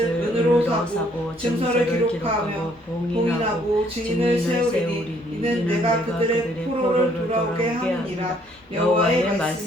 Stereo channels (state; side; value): normal; both; correlation 0.65